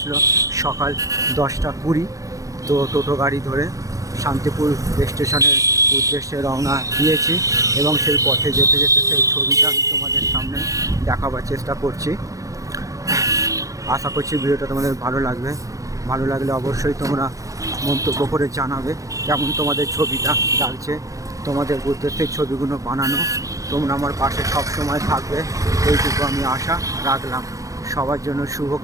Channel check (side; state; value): left; late; 0.16 ms